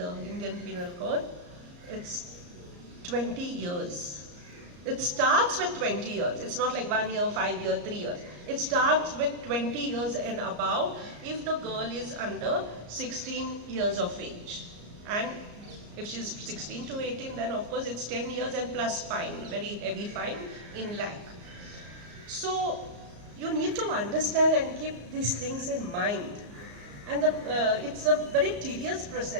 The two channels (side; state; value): left; late; 34 ms